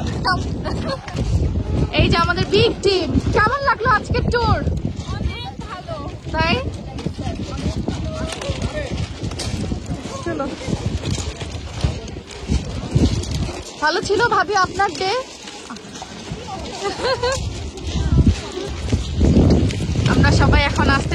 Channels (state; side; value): identical; both; correlation 1.00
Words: stop. এই যে আমাদের বিগ টিম, কেমন লাগলো আজকের ট্যুর? অনেক ভালো। তাই চলো, ভালো ছিল ভাবি আপনার ডে?